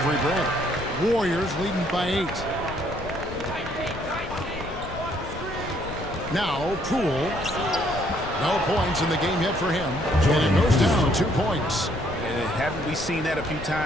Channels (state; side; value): noise; left; rumble, 11 dB below the sound